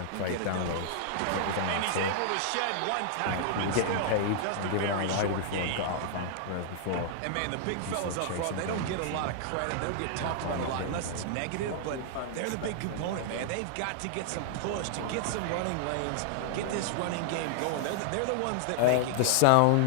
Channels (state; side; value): different; both; correlation -0.01